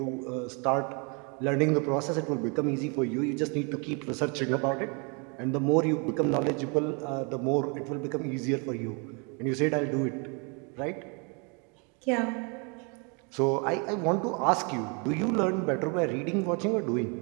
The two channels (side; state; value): left; quieter; 33.7 dB